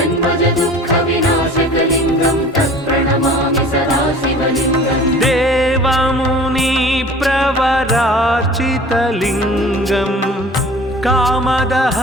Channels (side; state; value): both; normal; correlation 0.44